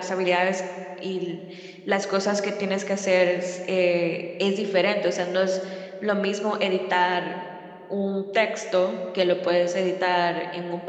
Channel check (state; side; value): identical; both; correlation 1.00